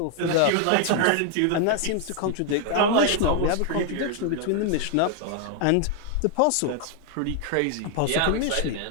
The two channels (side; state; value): both; different; correlation 0.00